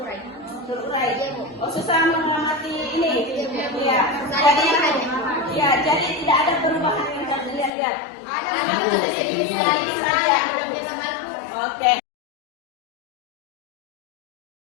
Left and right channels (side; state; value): right; drops out; at 7.7 s